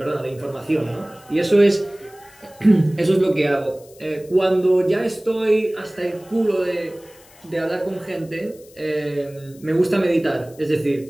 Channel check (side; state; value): left; noise; hiss, 25 dB below the sound